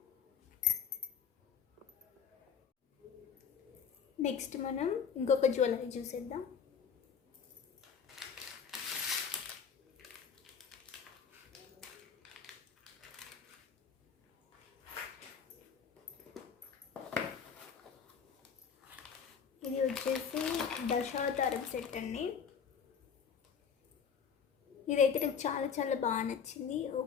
నెక్స్ట్ మనం ఇంకొక జ్యువెలరీ చూసేద్దాం. ఇది వచ్చేసి దశావతారం సెట్ అండి. ఇదైతే నాకు చాలా చాలా బాగా నచ్చింది.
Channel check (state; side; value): quieter; right; 6.9 dB